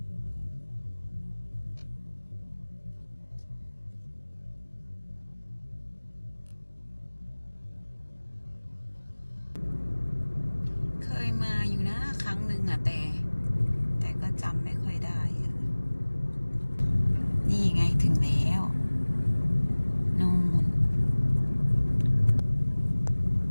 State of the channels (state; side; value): inverted; both; correlation -1.00